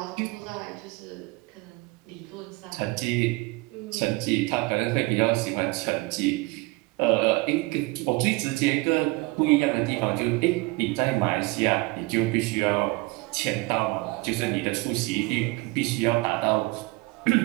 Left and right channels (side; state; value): left; quieter; 23.8 dB